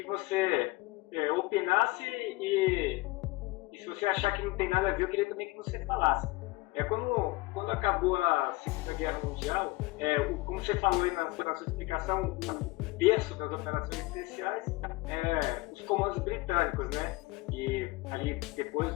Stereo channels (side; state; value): right; quieter; 21.5 dB